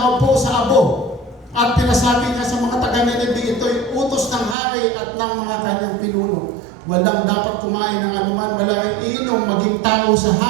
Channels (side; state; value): left; drops out; at 4.5 s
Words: sa abo. At pinasabi niya sa mga taga-Nineveh, ito'y utos ng hari at ng mga kanyang pinuno. Walang dapat kumain ng anuman, walang iinom, maging tao sa